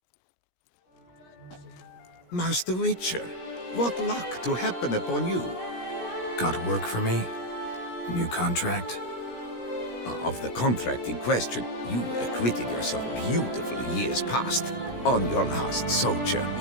Master Witcher, what luck to happen upon you? Got work for me? New contract? Of the contract in question, you acquitted yourself beautifully years past on your last sojourn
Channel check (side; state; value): right; late; 17 ms